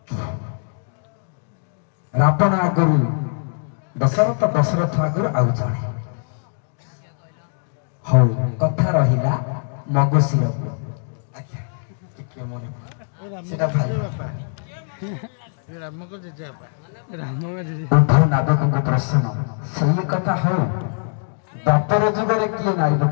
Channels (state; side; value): silent; right; digital silence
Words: ରାବଣ ଆଗରୁ ଦଶରଥ, ଦଶରଥ ଆଗରୁ ଆଉ ଜଣେ। ହଉ କଥା ରହିଲା ମଗୁଶିରକୁ। ସେଟା ଭାଇ ଉଭୟ ନାବିକଙ୍କ ପ୍ରଶ୍ନ ସେଇ କଥା। ହଉ ଦ୍ୱାପର ଯୁଗରେ କିଏ ନାରୀ ରୂପ